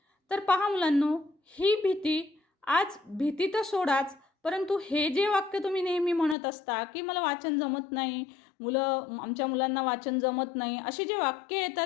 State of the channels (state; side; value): drops out; right; at 6.4 s